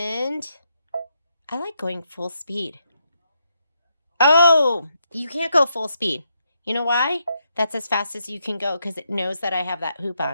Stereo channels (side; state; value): both; inverted; correlation -0.80